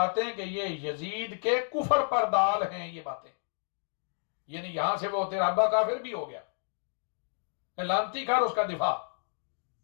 ہیں کہ یہ یزید کے کفر پر دال ہیں یہ باتیں یعنی یہاں سے وہ تیرا ابا کافر بھی ہو گیا لانتی کر اس کا دفاع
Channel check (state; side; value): silent; right; 57 dB below the other